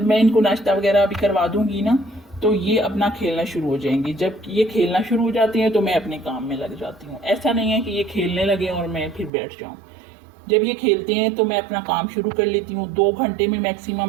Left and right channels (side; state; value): left; drops out; at 9.3 s